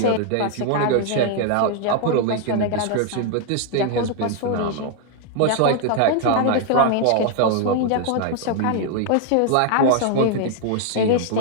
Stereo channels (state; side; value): different; both; correlation 0.00